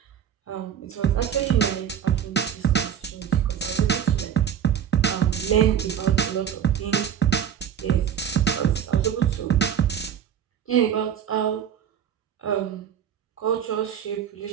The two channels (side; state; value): left; quieter; 8.9 dB